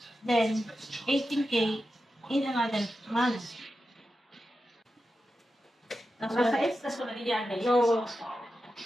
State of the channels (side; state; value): both; normal; correlation 0.91